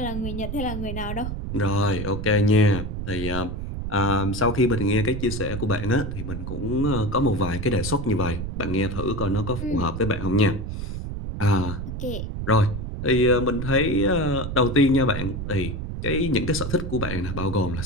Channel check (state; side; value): noise; right; rumble, 5 dB below the sound